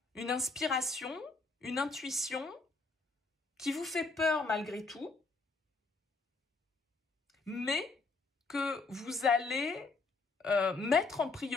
une inspiration, une intuition qui vous fait peur malgré tout, mais que vous allez mettre en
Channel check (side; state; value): right; quieter; 3.8 dB